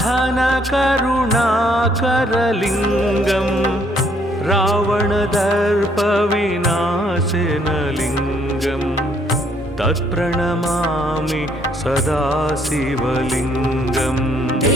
रावणदर्पविनाशनलिङ्गं तत्प्रणमामि सदा शिवलिङ्गम्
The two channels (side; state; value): both; normal; correlation 0.67